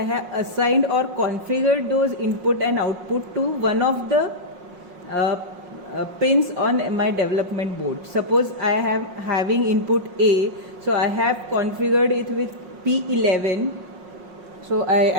have assigned or configured those input and output to one of the pins on my development board. Suppose I am having input A, so I have configured it with P11. So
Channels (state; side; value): late; left; 5.5 ms